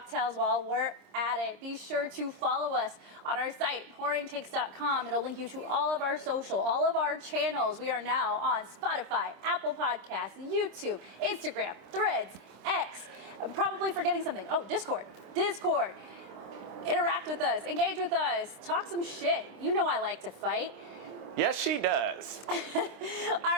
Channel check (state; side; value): late; left; 26 ms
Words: while we're at it. Be sure to follow us on our site, pouringtakes.com. It'll link you to all of our social, all of our channels. We are now on Spotify, Apple Podcasts, YouTube, Instagram, Threads, X. I'm probably forgetting something. Oh, Discord. Interact with us, engage with us, talk some shit. You know I like to fight. Yes, she does. All